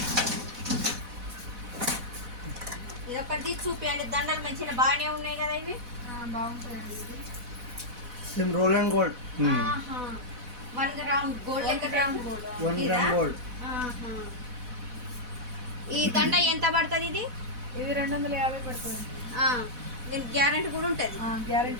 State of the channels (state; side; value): late; left; 4.1 ms